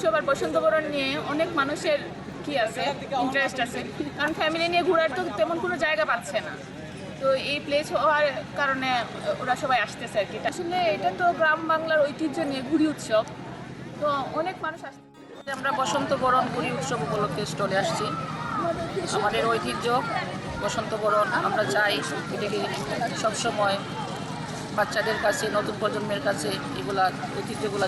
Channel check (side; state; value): both; identical; correlation 1.00